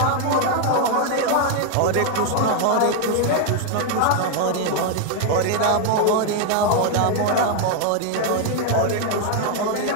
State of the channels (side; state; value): both; different; correlation 0.00